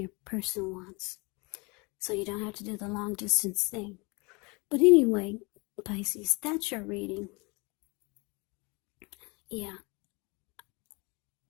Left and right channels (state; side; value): quieter; right; 28.1 dB